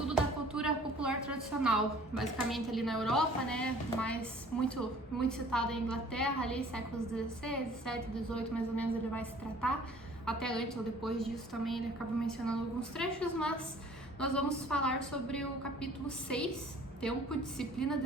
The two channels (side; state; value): both; normal; correlation 0.52